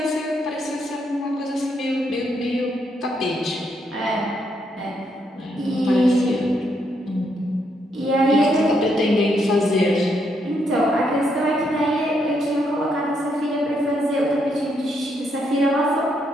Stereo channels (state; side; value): normal; both; correlation 0.76